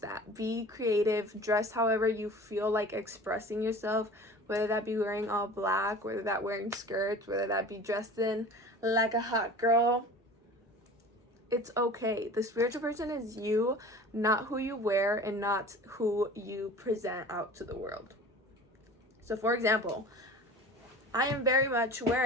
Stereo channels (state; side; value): normal; both; correlation 0.40